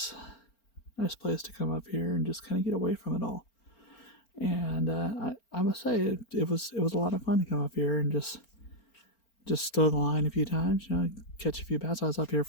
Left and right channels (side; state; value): right; late; 4.4 ms